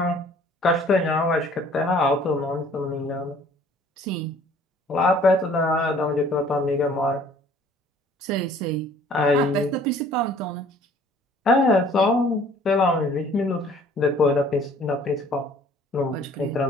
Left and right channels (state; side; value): normal; both; correlation 0.54